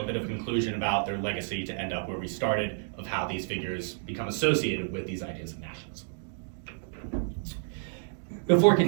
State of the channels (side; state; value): left; silent; 57 dB below the other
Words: a bit of a conclusion about their legacy to end up where we started, of how these figures become associated with these ideas of nationalism. Before